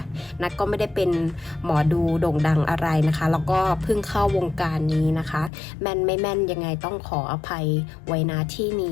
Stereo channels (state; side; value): drops out; right; at 5.5 s